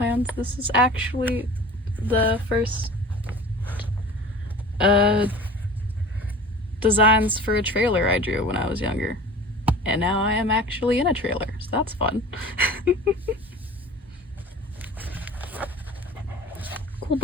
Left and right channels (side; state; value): both; normal; correlation 0.40